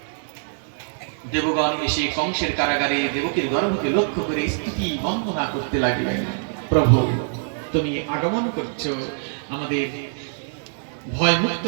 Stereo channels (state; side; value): silent; left; digital silence